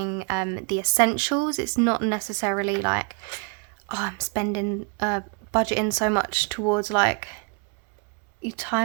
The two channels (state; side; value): quieter; left; 34.5 dB